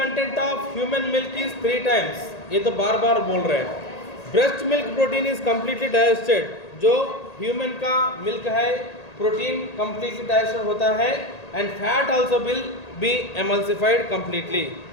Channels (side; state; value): right; late; 1.8 ms